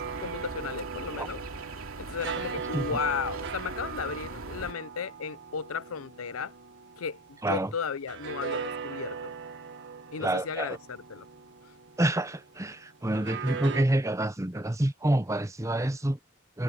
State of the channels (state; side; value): normal; both; correlation 0.49